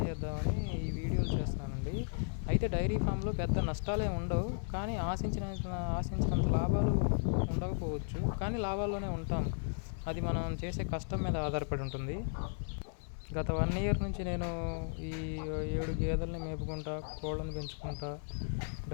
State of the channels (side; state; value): right; silent; digital silence